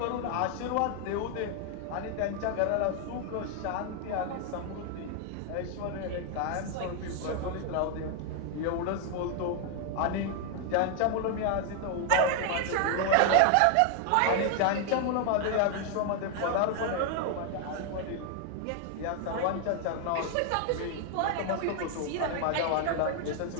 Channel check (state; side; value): different; both; correlation 0.00